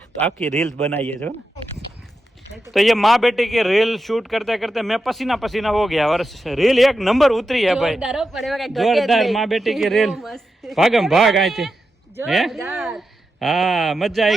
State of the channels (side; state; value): both; normal; correlation 0.89